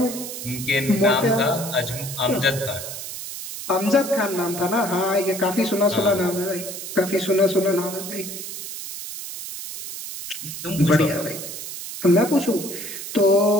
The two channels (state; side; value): noise; right; hiss, 9 dB below the sound